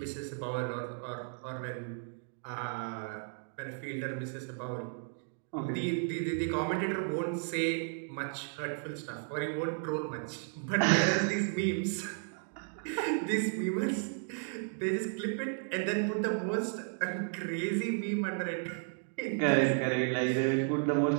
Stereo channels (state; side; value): silent; left; 55 dB below the other